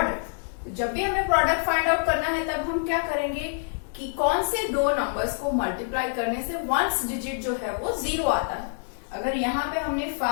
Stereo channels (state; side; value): silent; right; 61 dB below the other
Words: जब भी हमें प्रोडक्ट फाइंड आउट करना है तब हम क्या करेंगे कि कौन से दो नंबर्स को मल्टीप्लाई करने से वंस डिजिट जो है वो 0 आता है। अगर यहाँ पे हमने